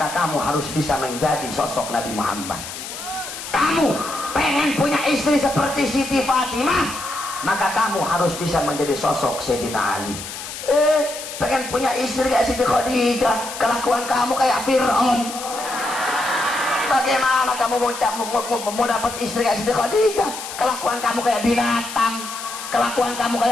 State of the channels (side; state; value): left; noise; hiss, 9 dB below the sound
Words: kamu harus bisa menjadi sosok Nabi Muhammad. Kamu pengen punya istri seperti Siti Fatimah, maka kamu harus bisa menjadi sosok Sayyidina Ali. Pengen punya istri kayak Siti Khadijah, kelakuan kamu kayak Fir'aun. Bagaimana kamu mau dapat istri kayak Siti Khadijah? Kelakuan kamu kayak binatang, kelakuan kamu